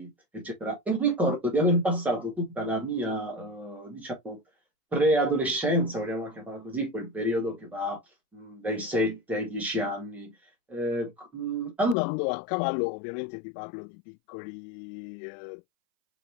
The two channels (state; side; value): drops out; right; at 12.0 s